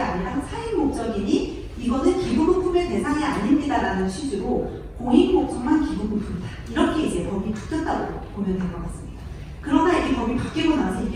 사익 목적이니 이거는 기부금품의 대상이 아닙니다라는 취지로 공익 목적만 기부금품이다. 이렇게 이제 법이 바뀌었다고 보면 될 것 같습니다. 그러나 이 법이 바뀌고 나서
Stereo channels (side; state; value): both; identical; correlation 1.00